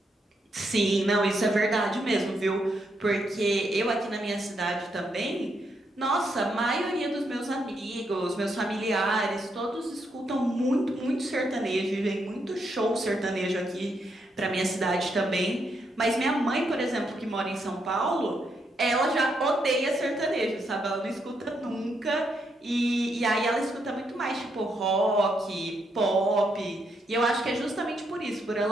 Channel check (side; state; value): both; normal; correlation 0.78